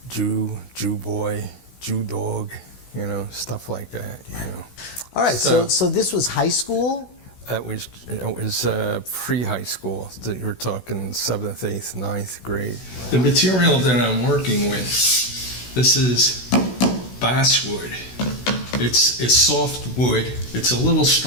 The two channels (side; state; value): right; late; 16 ms